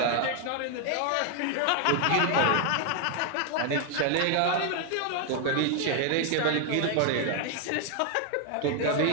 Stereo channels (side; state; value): both; different; correlation 0.00